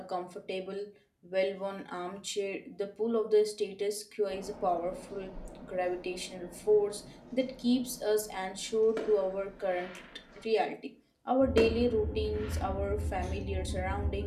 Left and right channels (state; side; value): identical; both; correlation 1.00